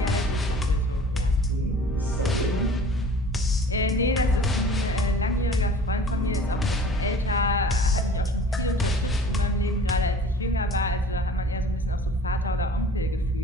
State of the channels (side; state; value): both; normal; correlation 0.46